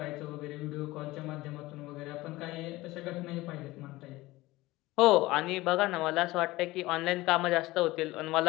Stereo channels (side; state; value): right; quieter; 19.0 dB